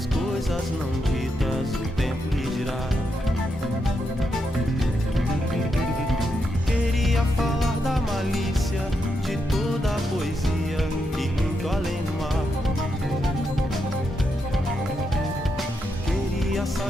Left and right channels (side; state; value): both; normal; correlation 0.83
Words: coisas não ditas, o tempo lhe dirá. Queria falar da malícia, de toda a poesia e muito além do mar. Queria